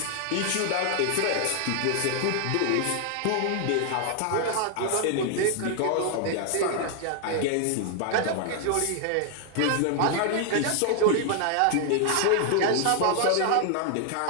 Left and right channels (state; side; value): different; both; correlation 0.00